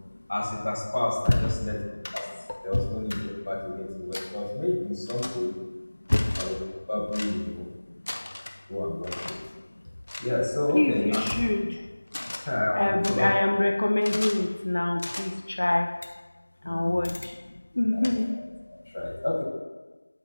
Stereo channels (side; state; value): both; inverted; correlation -1.00